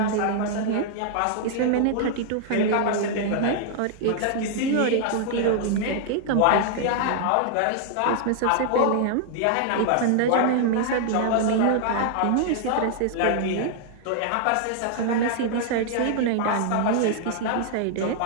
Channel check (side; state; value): both; different; correlation -0.01